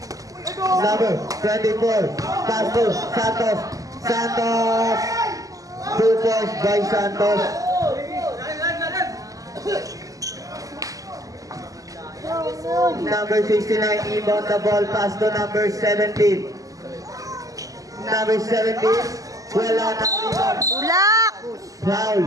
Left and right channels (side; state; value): left; late; 0.17 ms